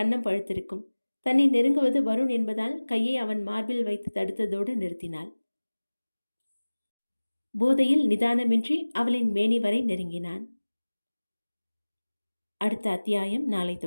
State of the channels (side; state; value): both; inverted; correlation -1.00